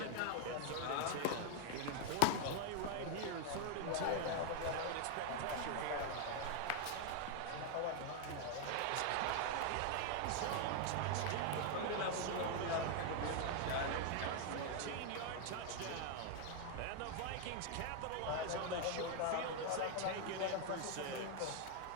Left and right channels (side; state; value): both; different; correlation 0.00